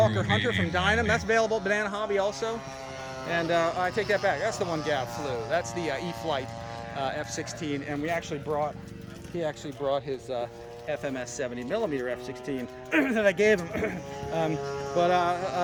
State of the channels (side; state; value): both; identical; correlation 1.00